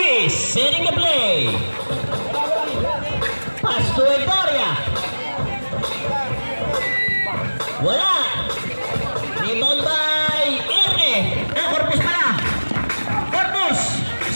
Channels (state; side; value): inverted; both; correlation -1.00